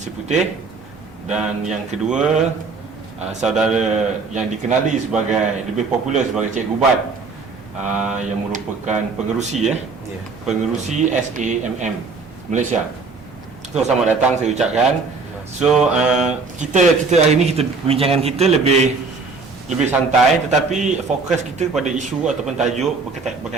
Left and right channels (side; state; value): left; quieter; 4.4 dB